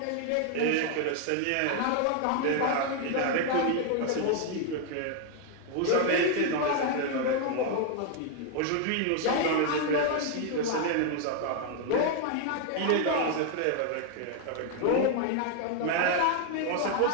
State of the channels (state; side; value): different; both; correlation 0.00